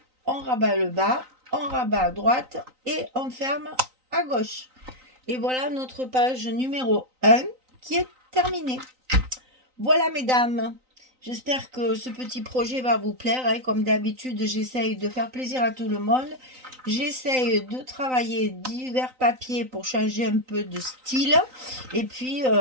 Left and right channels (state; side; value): late; left; 3.9 ms